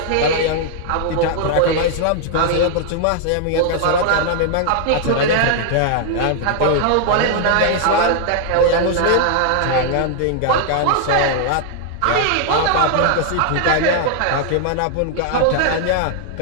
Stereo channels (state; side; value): different; both; correlation 0.00